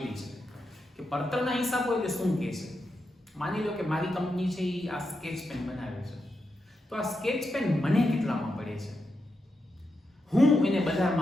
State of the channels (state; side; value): normal; both; correlation 0.86